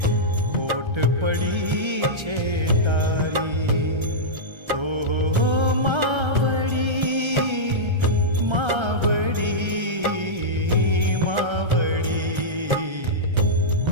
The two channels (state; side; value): late; left; 1.3 ms